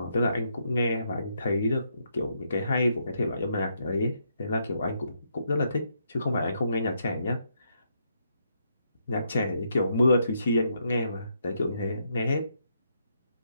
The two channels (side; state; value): both; inverted; correlation -0.77